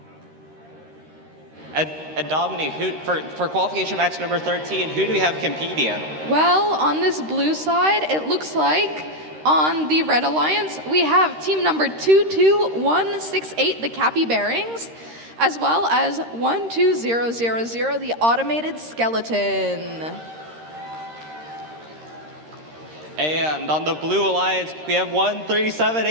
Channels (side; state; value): left; late; 13 ms